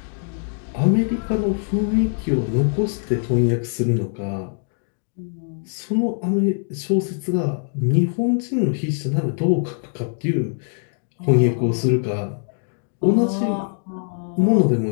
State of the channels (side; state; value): right; silent; digital silence